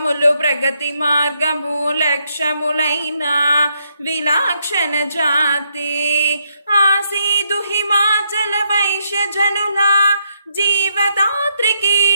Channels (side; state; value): both; inverted; correlation -0.77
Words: ప్రగతి మార్గము లక్ష్యములైన విలాక్షణ జాతి ఆసీదు హిమాచల వైశ్యజనుల జీవదాత్రికి